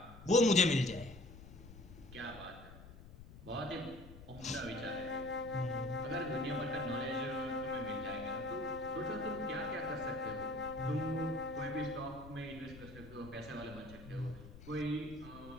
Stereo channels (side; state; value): left; noise; rumble, 16 dB below the sound